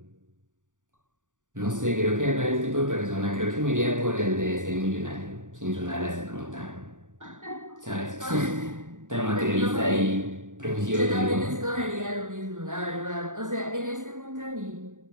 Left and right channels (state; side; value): late; left; 0.87 ms